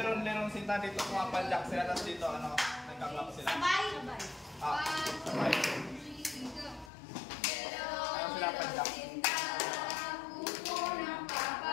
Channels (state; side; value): drops out; right; at 6.9 s